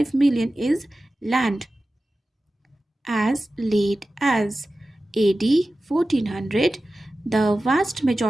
million is land. As late as AD 1400, The vast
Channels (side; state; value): both; normal; correlation 0.95